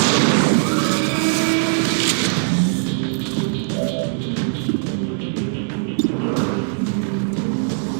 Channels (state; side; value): silent; left; digital silence